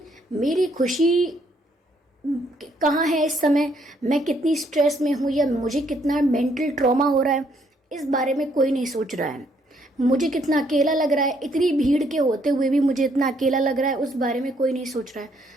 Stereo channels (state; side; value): normal; both; correlation 0.69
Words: मेरी खुशी कहाँ है इस समय, मैं कितनी स्ट्रेस में हूँ या मुझे कितना मेंटल ट्रॉमा हो रहा है, इस बारे में कोई नहीं सोच रहा है। मुझे कितना अकेला लग रहा है, इतनी भीड़ के होते हुए भी मुझे इतना अकेला लग रहा है, उस बारे में कोई नहीं सोच रहा है।